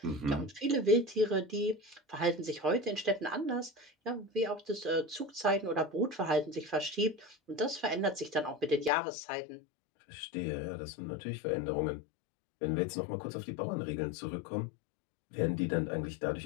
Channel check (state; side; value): drops out; right; at 8.9 s